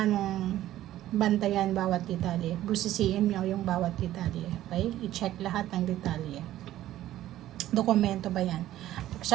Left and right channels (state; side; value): quieter; left; 13.7 dB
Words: mong bantayan bawat detalye. Busisiin mo yung bawat detalye. Okay? I-check lahat ng detalye. Dokumento ba yan?